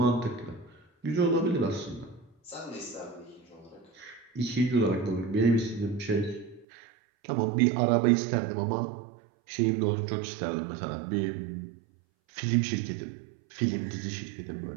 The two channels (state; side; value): drops out; left; at 6.7 s